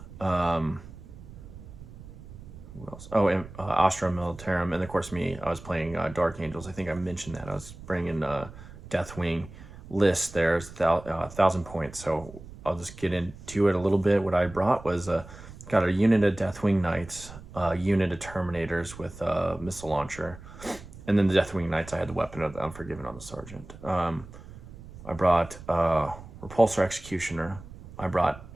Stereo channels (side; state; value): right; noise; rumble, 16 dB below the sound